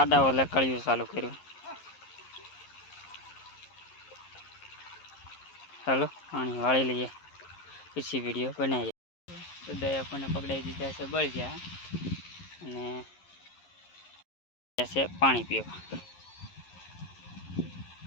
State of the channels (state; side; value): late; right; 11 ms